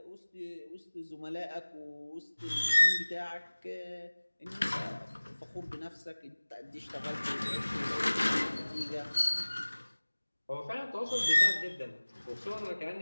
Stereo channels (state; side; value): inverted; both; correlation -1.00